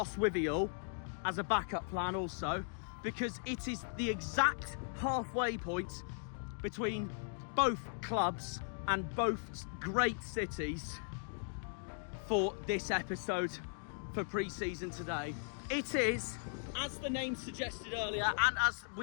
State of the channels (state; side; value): silent; right; digital silence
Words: as a backup plan also, because it is the exact halfway point between both clubs and both great cities for this episode for pre-season today. It is, as the name suggested earlier, and as